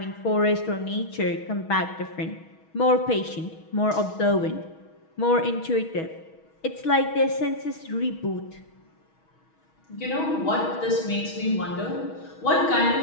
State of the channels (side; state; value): right; late; 6.3 ms